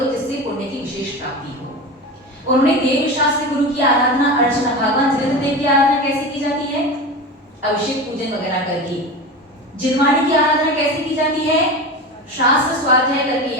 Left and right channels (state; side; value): normal; both; correlation 0.27